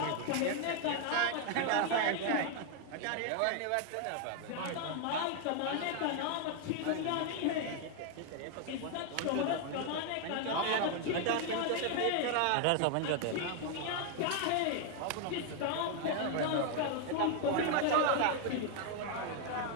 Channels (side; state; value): both; different; correlation 0.01